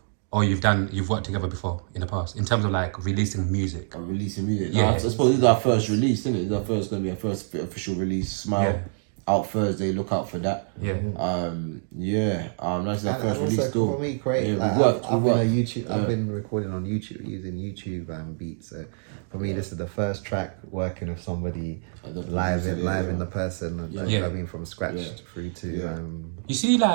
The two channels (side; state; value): left; silent; digital silence